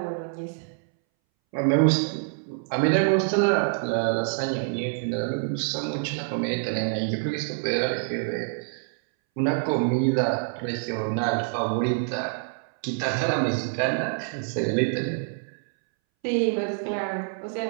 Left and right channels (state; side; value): silent; left; 61 dB below the other